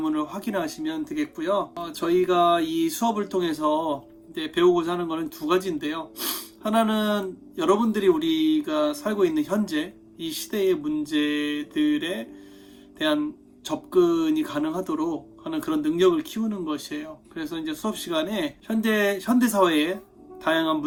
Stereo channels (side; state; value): both; identical; correlation 1.00